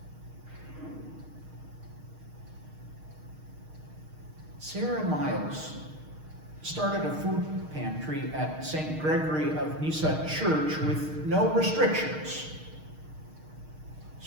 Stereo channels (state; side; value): late; left; 6.5 ms